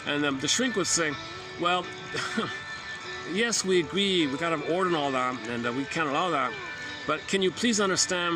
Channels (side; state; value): both; identical; correlation 1.00